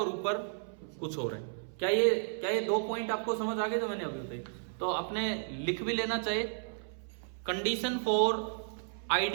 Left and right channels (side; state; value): left; silent; 56 dB below the other